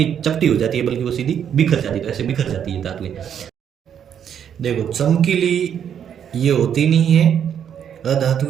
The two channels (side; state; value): left; quieter; 8.7 dB